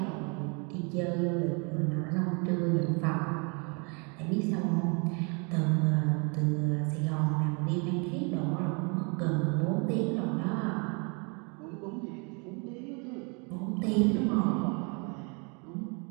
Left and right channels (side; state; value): left; quieter; 33.9 dB